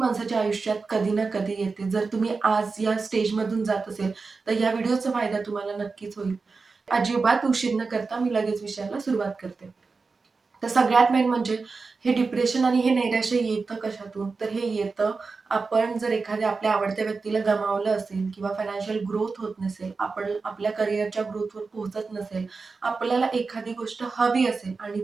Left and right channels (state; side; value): quieter; left; 4.4 dB